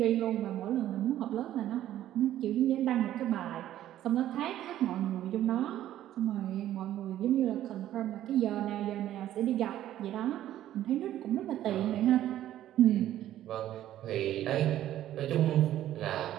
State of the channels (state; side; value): quieter; left; 12.6 dB